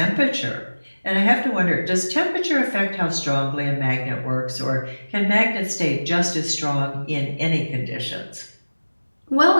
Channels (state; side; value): inverted; both; correlation -1.00